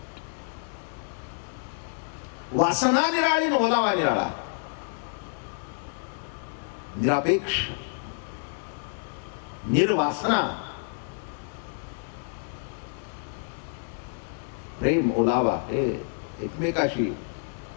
वासना निराळी, ओलावा निराळा, निरापेक्ष, निर्वासना. प्रेम, ओलावा हे एकमेकाशी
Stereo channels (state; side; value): silent; right; digital silence